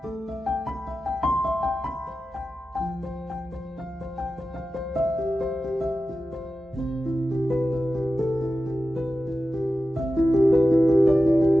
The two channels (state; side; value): normal; both; correlation 0.92